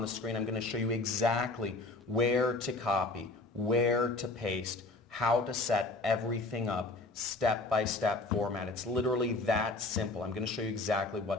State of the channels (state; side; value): quieter; right; 3.2 dB